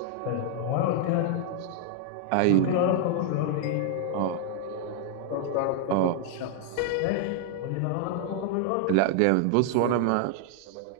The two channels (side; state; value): both; different; correlation -0.01